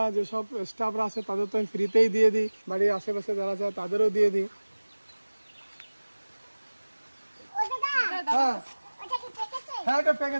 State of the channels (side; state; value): both; inverted; correlation -1.00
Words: যেসব স্টাফরা আছে তাদের তো আমি ফ্রিতেই দিয়ে দিই, বাড়ির আশেপাশে যারা যায় তাদেরও দিয়ে দিই। হ্যাঁ হ্যাঁ, এটা